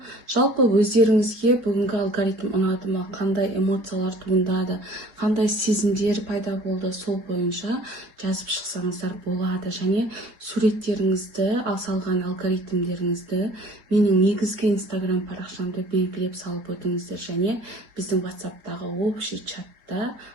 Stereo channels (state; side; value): late; left; 3.9 ms